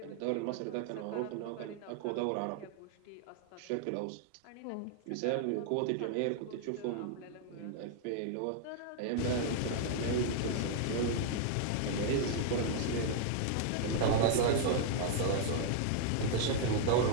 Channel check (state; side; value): different; both; correlation 0.00